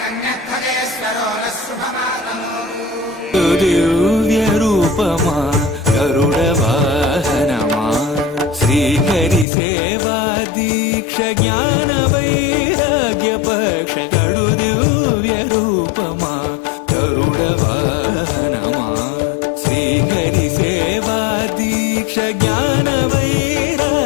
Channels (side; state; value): right; drops out; at 9.5 s